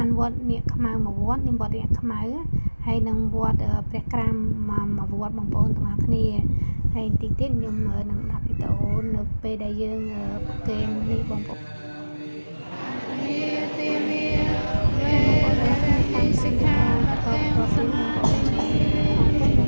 ានវត្តនាគខ្មៅមួយវត្តនេះវត្តនាគខ្មៅហើយនឹងវត្តព្រះក្រាមមួយវត្តបងប្អូនទាំងអស់គ្នាហើយតិចទៀតខ្ញុំនឹងដាក់វីដេអូនៅពេលដែលយើងប្រកេននេះបងប្អូនសិក្ខាបទសមាទិនី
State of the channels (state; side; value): inverted; both; correlation -1.00